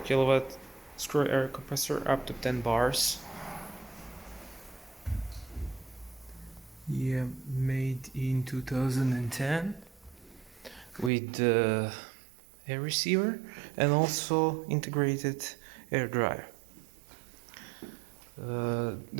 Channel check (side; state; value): left; drops out; at 11.1 s